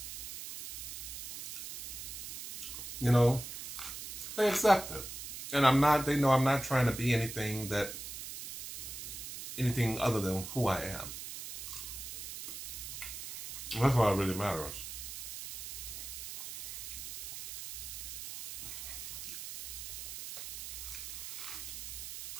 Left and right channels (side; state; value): right; noise; hiss, 8 dB below the sound